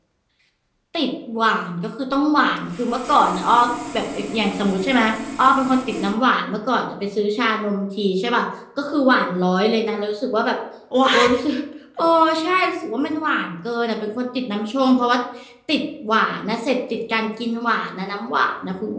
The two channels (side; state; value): both; identical; correlation 1.00